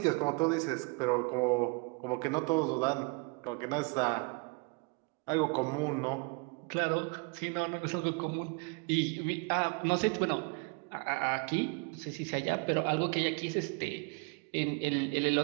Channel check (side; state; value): left; quieter; 31.6 dB